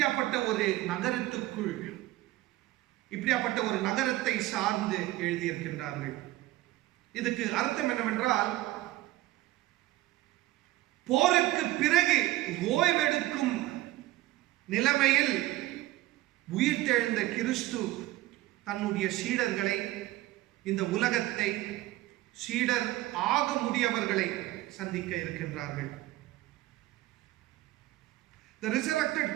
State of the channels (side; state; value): left; quieter; 16.9 dB